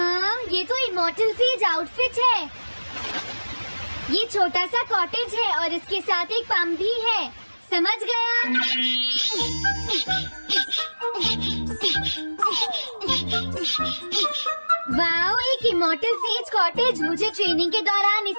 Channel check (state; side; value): inverted; both; correlation -1.00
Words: ये तो इमॉर्टल सेज आउटफिट है। ये छोटा सा कॉटेज है और इसके साथ एक पंप भी है। समझ गया। वाओ, एक इमॉर्टल सेज कॉटेज। मुझे ट्रेनिंग के दौरान